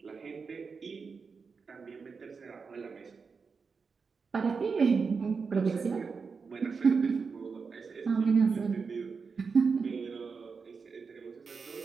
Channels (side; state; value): left; quieter; 5.2 dB